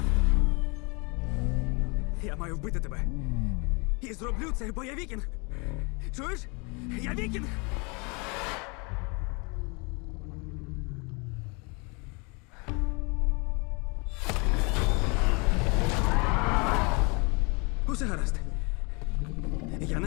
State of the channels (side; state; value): right; quieter; 30.8 dB